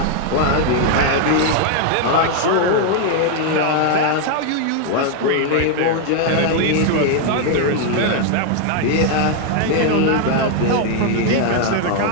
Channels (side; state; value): both; different; correlation 0.00